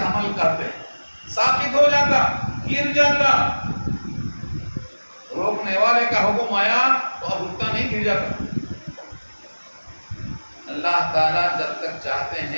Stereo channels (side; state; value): both; inverted; correlation -1.00